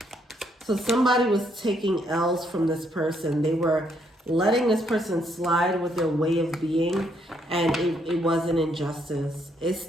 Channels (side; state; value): both; normal; correlation 0.72